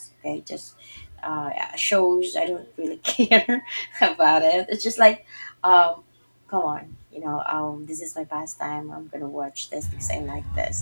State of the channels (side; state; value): both; inverted; correlation -1.00